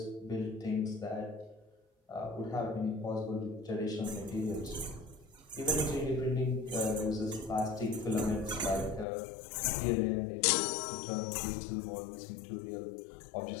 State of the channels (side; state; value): right; drops out; at 9.1 s